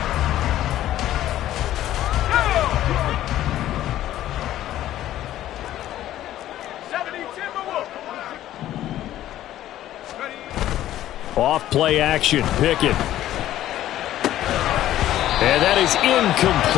Off play action. Pickett. And that is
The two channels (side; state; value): right; quieter; 13.2 dB